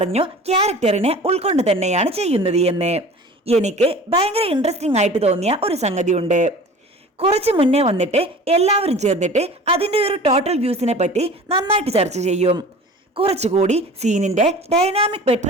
ക്യാരക്ടറിനെ ഉൾക്കൊണ്ട് തന്നെയാണ് ചെയ്യുന്നത് എന്ന്. എനിക്ക് ഭയങ്കര ഇൻട്രസ്റ്റിംഗ് ആയിട്ട് തോന്നിയ ഒരു സംഗതിയുണ്ട്. കുറച്ച് മുന്നേ വന്നിട്ട് എല്ലാവരും ചേർന്നിട്ട് അതിന്റെ ഒരു ടോട്ടൽ വ്യൂസിനെ പറ്റി നന്നായിട്ട് ചർച്ച ചെയ്യും. കുറച്ചുകൂടി സീനിന്റെ ഡൈനാമിക്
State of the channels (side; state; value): both; normal; correlation 0.41